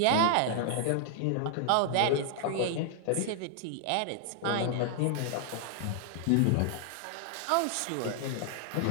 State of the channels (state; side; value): different; both; correlation 0.00